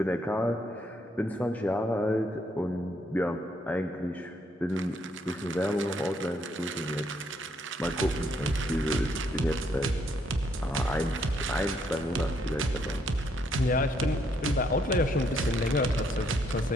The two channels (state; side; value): normal; both; correlation 0.72